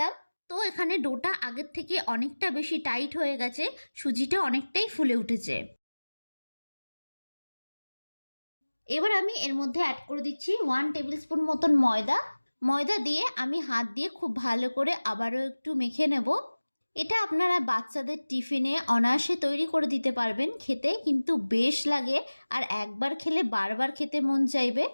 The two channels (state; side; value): inverted; both; correlation -1.00